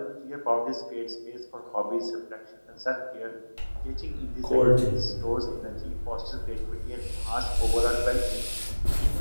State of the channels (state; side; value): inverted; both; correlation -1.00